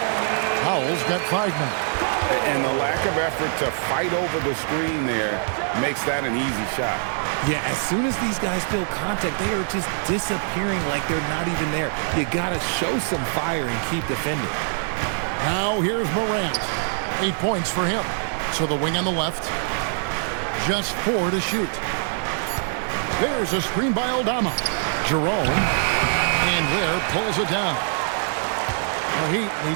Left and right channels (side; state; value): left; silent; 60 dB below the other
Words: Powell's got 5 now. And the lack of effort to fight over the screen there makes that an easy shot. Yeah, as soon as these guys feel contact, they are just disappearing like they're not even there. You got to show some fire and keep defending. Now here's Morant. 8 points for him. So the wing on the left. Just 4 to shoot. There's a screen by Aldama. Jerome. And Ware pulls it down. The Heat